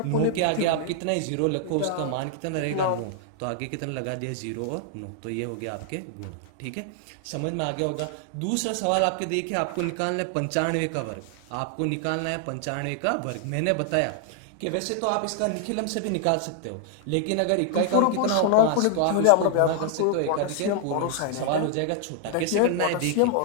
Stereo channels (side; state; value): both; different; correlation 0.00